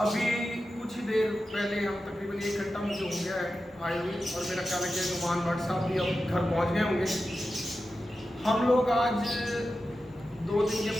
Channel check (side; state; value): both; normal; correlation 0.92